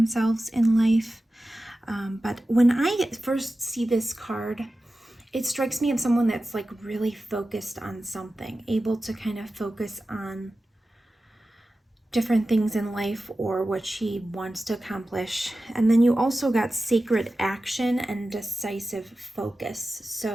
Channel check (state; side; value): normal; both; correlation 0.94